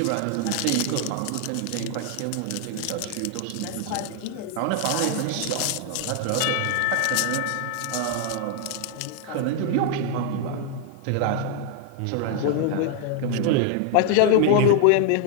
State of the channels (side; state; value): both; different; correlation 0.00